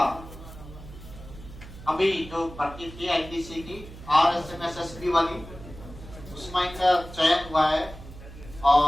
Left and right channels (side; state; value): right; noise; hum, 16 dB below the sound